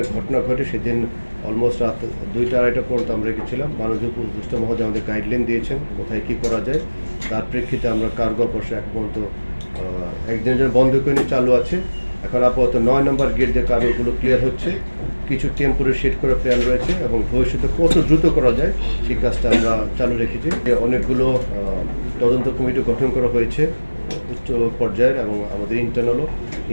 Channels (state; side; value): inverted; both; correlation -1.00